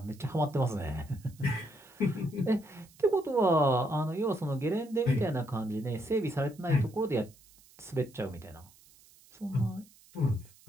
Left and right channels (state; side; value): noise; right; hiss, 26 dB below the sound